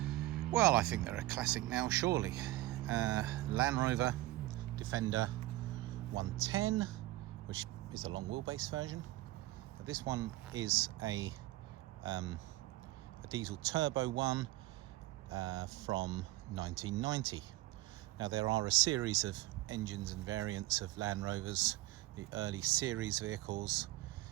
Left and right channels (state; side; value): quieter; left; 17.6 dB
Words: well, I think they're a classic now, surely. Land Rover Defender 110, which is a long wheelbase version. But this one is a diesel turbo one from 1990. Now there are a series of engines and variants of Land Rovers, the early series vehicles,